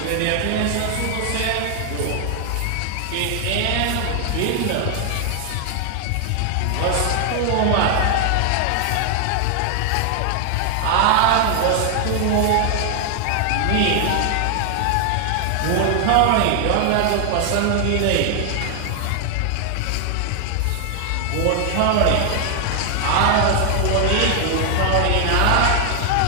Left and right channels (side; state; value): both; different; correlation 0.00